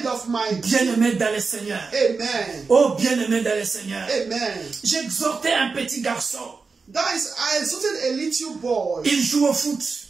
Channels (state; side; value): quieter; left; 4.6 dB